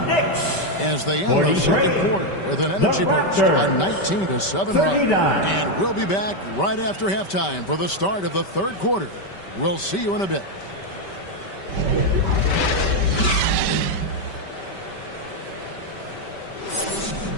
as they end the second quarter with an energy burst, a 19-7 run. And we'll be back right after halftime for the start of the third quarter. We'll see you in a bit.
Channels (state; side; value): late; right; 5.2 ms